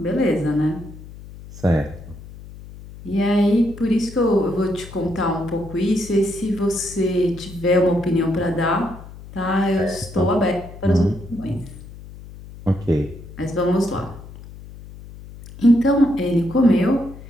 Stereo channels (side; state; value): left; noise; hum, 16 dB below the sound